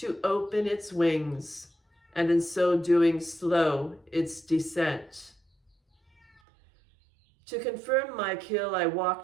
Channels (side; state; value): left; drops out; at 6.4 s